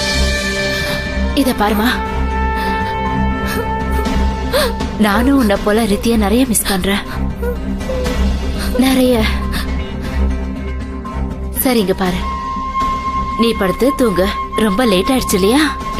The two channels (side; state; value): both; identical; correlation 1.00